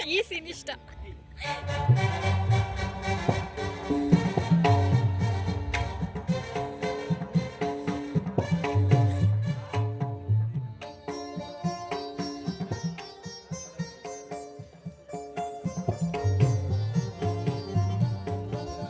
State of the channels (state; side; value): identical; both; correlation 1.00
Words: ಈ ಸೀನ್ ಇಷ್ಟ.